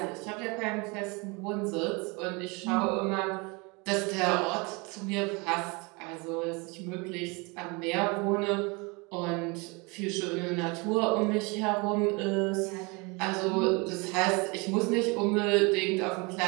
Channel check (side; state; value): left; quieter; 28.4 dB